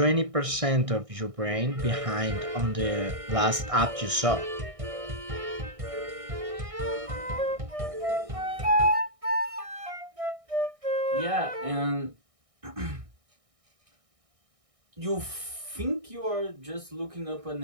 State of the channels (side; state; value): left; late; 1.6 ms